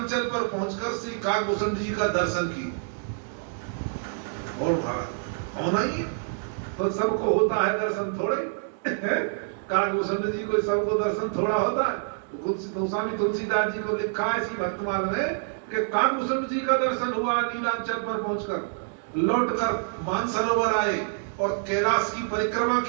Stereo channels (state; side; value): silent; left; digital silence